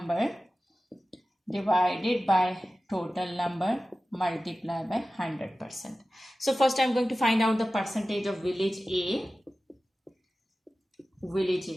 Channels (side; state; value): both; normal; correlation 0.95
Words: divided by total number multiplied by 100%. So first I'm going to find out the percentage of village A.